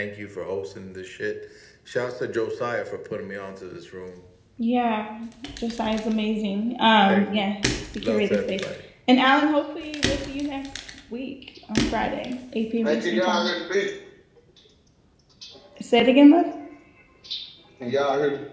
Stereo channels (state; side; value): identical; both; correlation 1.00